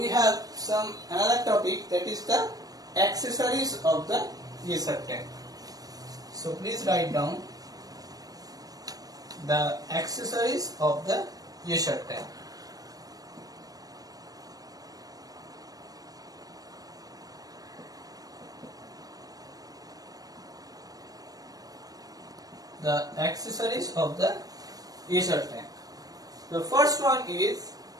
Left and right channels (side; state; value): left; late; 0.18 ms